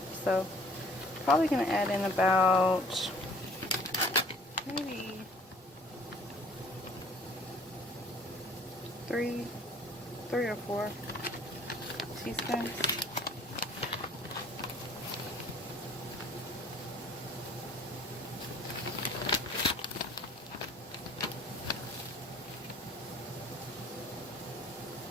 so probably gonna add in about maybe three or four teaspoons.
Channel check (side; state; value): both; normal; correlation 0.54